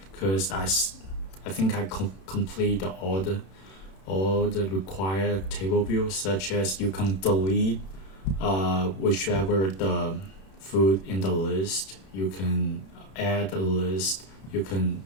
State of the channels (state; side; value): late; right; 31 ms